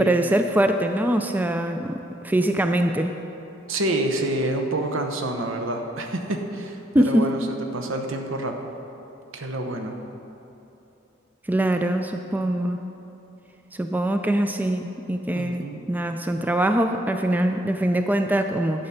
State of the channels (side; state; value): both; normal; correlation 0.74